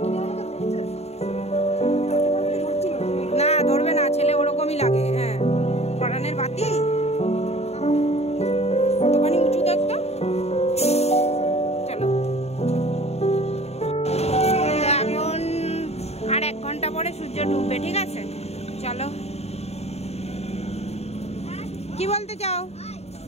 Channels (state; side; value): late; right; 0.31 ms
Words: না ধরবে না, ছেলে ওরকমই লাগে। হ্যাঁ পরানের বাতি কতখানি উঁচু দেখতো। চলো, এখন আর 1 ঘন্টা পরে সূর্য ডুববে, ঠিক আছে? চলো, কি বলতে চাও?